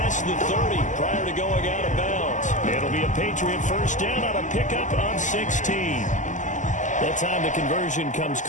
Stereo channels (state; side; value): late; right; 0.36 ms